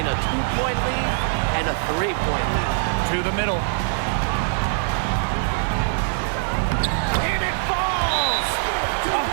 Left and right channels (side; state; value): left; silent; 64 dB below the other